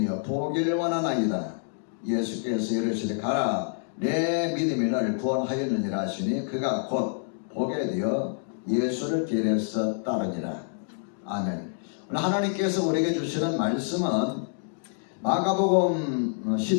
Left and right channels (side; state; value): right; silent; digital silence